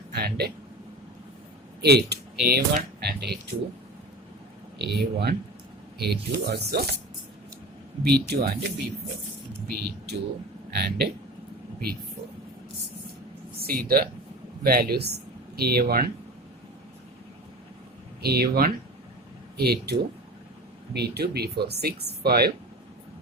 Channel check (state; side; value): normal; both; correlation 0.33